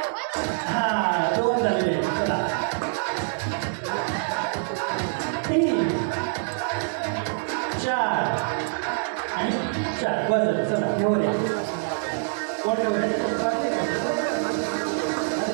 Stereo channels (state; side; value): silent; left; digital silence